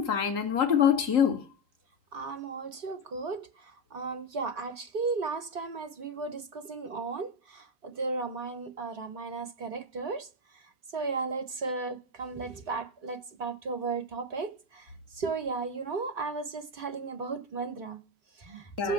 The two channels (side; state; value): left; late; 3.8 ms